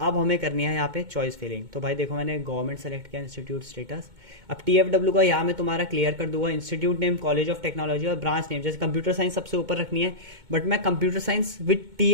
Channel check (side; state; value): left; late; 2.2 ms